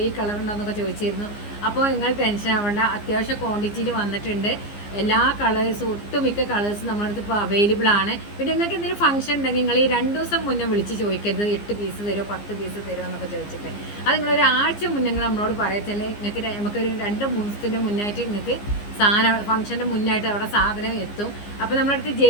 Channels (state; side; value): late; right; 15 ms